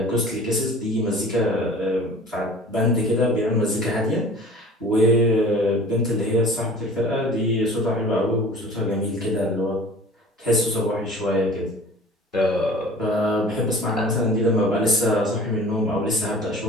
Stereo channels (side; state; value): both; normal; correlation 0.44